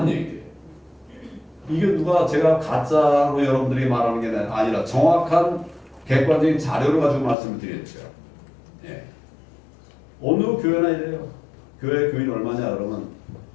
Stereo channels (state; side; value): drops out; right; at 7.4 s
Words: 얘기예요. 이게 누가 제가 가짜로 여러분들이 말하는 게 아니라 정확한 객관적인 자료를 가지고 말씀을 드렸죠. 예. 어느 교회나 이래요. 교회 교인 얼마냐 그러면